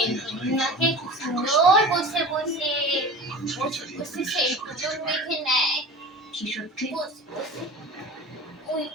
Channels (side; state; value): both; normal; correlation 0.36